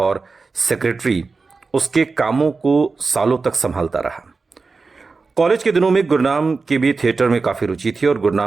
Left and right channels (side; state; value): left; quieter; 4.2 dB